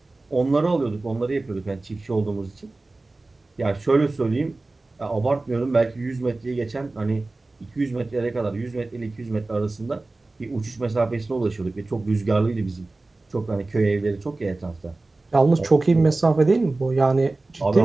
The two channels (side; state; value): left; quieter; 3.2 dB